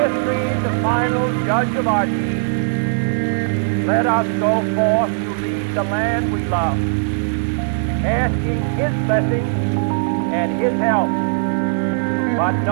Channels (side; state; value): left; silent; 56 dB below the other